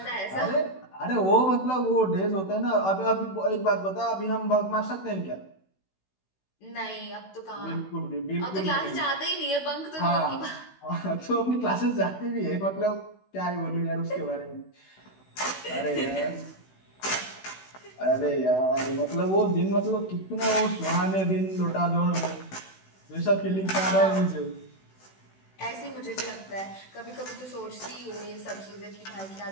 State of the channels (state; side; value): late; right; 16 ms